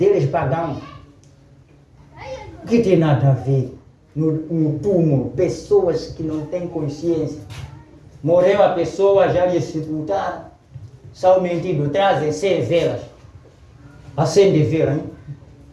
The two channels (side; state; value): both; identical; correlation 1.00